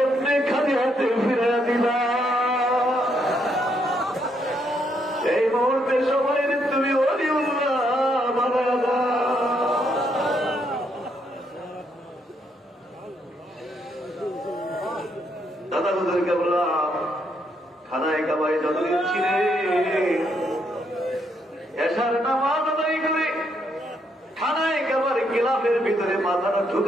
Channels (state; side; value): normal; both; correlation 0.75